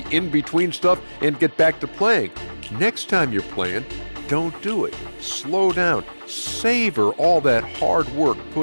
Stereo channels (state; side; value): inverted; both; correlation -1.00